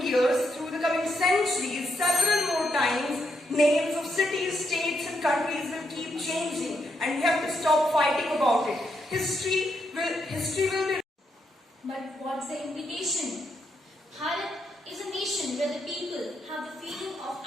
years, through the coming centuries, several more times, names of cities, states and countries will keep changing and we have to stop fighting about it. History will be... But what's the implication? Bharat is a nation where the people have the feeling of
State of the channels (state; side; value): normal; both; correlation 0.80